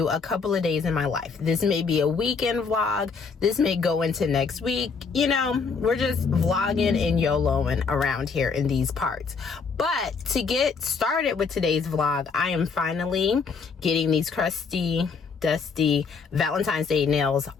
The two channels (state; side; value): quieter; right; 5.2 dB